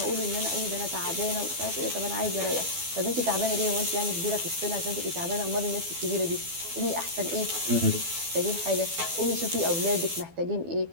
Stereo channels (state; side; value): late; left; 12 ms